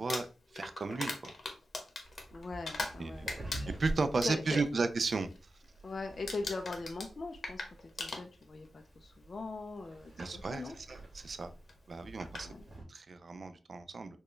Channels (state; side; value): normal; both; correlation 0.91